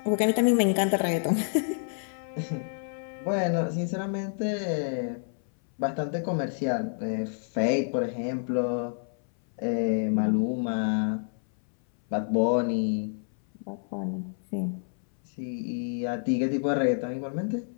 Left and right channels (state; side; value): silent; right; 58 dB below the other